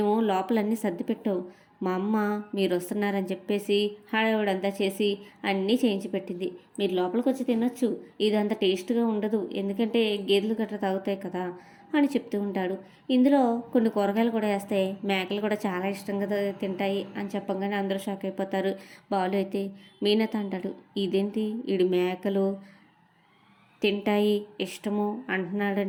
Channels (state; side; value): identical; both; correlation 1.00